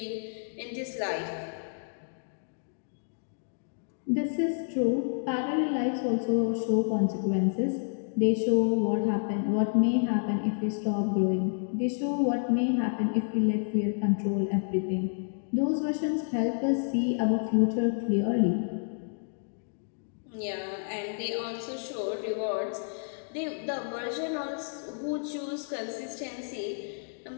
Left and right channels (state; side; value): silent; right; digital silence